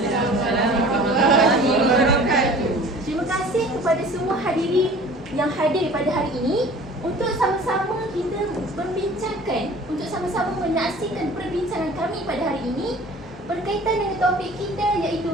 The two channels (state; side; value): normal; both; correlation 0.45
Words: warahmatullahi wabarakatuh. Terima kasih kepada semua hadirin yang hadir pada hari ini untuk sama-sama kita membincangkan, untuk sama-sama menyaksikan perbincangan kami pada hari ini berkaitan dengan topik kita,